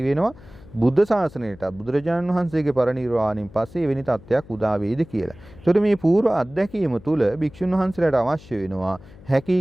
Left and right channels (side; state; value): left; noise; hum, 21 dB below the sound